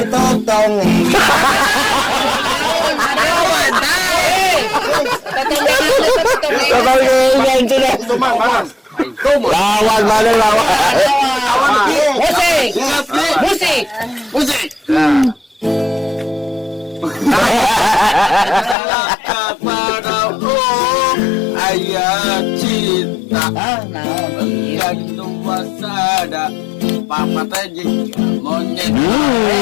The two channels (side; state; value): right; drops out; at 18.8 s